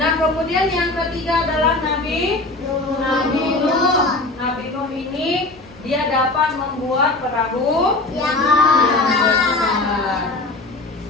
kemudian yang ketiga adalah Nabi Nuh. Nabi Nuh ini dia dapat membuat perahu yang besar.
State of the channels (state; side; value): quieter; right; 3.0 dB